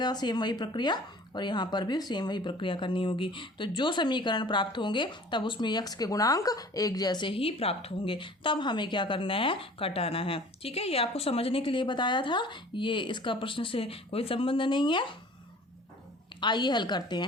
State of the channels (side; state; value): both; normal; correlation 0.47